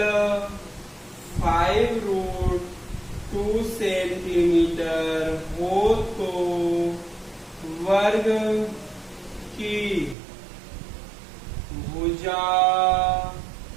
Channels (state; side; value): drops out; left; at 10.2 s